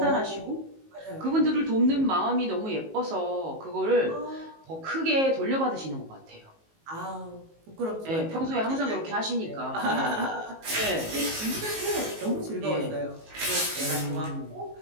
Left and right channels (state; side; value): late; left; 19 ms